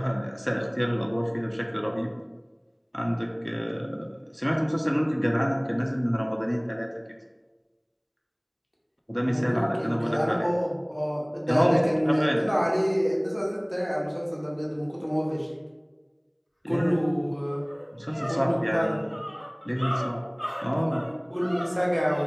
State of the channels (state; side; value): identical; both; correlation 1.00